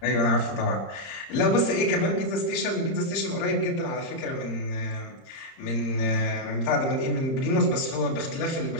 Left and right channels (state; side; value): late; right; 30 ms